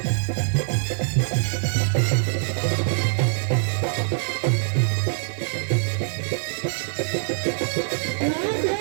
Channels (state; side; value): silent; left; digital silence